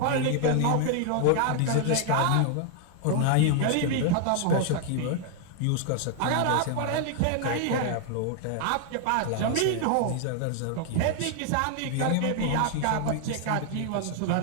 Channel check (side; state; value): both; different; correlation 0.00